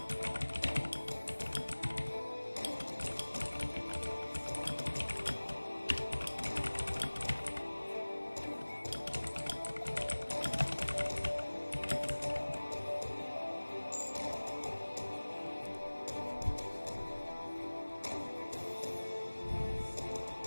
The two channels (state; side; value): inverted; both; correlation -1.00